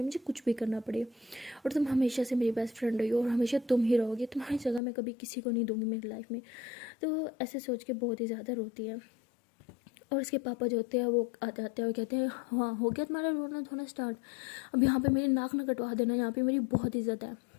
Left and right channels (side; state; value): right; drops out; at 4.8 s